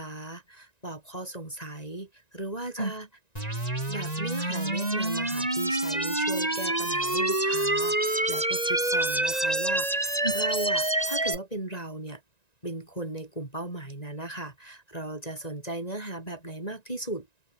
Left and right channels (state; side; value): late; right; 1.9 ms